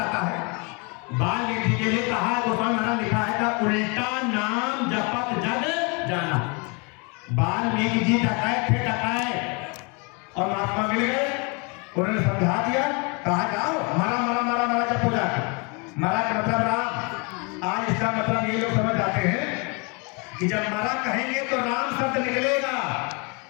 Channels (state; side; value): quieter; right; 31.9 dB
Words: है, वाल्मीकि के लिए कहा गोस्वामी महाराज लिखा है का उल्टा नाम जपत जग जाना। वाल्मीकि जी डकायत थे, डकायत, और महात्मा मिल गए, उन्होंने समझा दिया, कहा जाओ मरा मरा मरा मरा जब पूजा मरा का मतलब राम। आज इसका मतलब ये लोग समझ जाते हैं कि जब मरा कहेंगे तो राम शब्द निकलेगा,